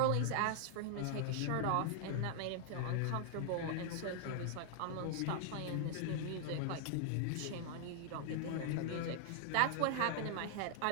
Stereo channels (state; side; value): different; both; correlation -0.01